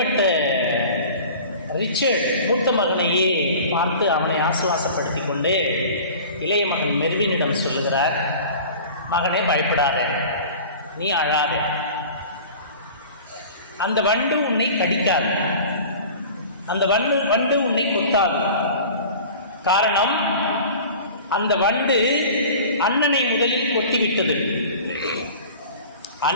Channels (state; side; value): inverted; both; correlation -0.41